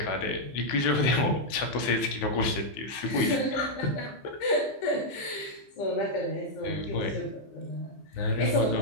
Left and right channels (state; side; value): late; right; 15 ms